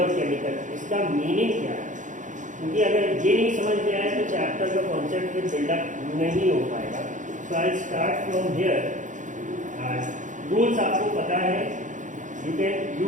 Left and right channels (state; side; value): late; left; 0.37 ms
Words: और केमिकल, इसका मीनिंग क्या है? क्योंकि अगर ये नहीं समझ में आए तो चैप्टर का कॉन्सेप्ट फिर बिल्डअप नहीं हो पाएगा. So I start from here. Rules आपको पता है. You can